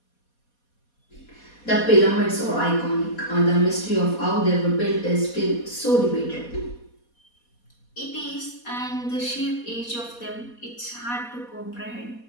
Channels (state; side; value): late; right; 4.2 ms